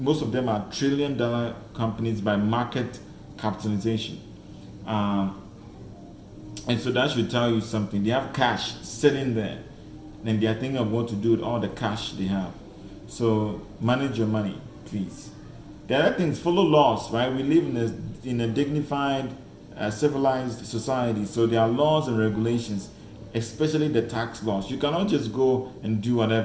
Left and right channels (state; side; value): identical; both; correlation 1.00